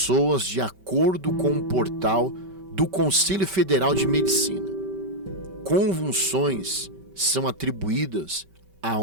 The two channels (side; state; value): left; late; 5.2 ms